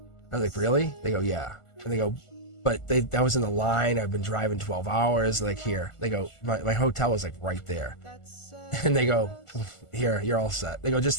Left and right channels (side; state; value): right; late; 1.4 ms